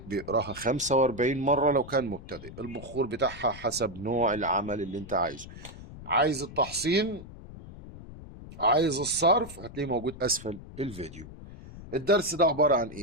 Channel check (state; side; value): noise; left; rumble, 15 dB below the sound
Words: بيقراها 45 مرة لو كان مبتدئ. البخور بتاعها حسب نوع العمل اللي انت عايزه. عايز التحصين، عايز الصرف، هتلاقيه موجود أسفل الفيديو. الدرس ده عبارة عن